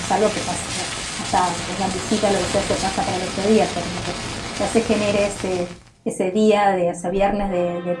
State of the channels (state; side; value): identical; both; correlation 1.00